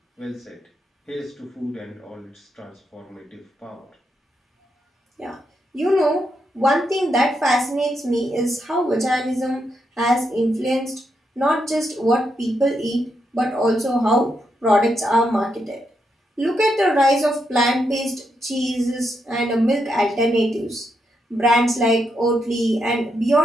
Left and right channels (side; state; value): both; normal; correlation 0.81